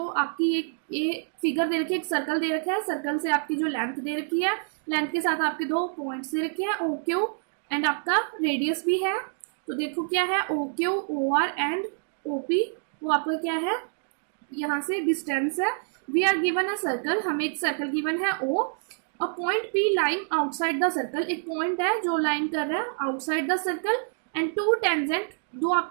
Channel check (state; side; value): silent; left; 60 dB below the other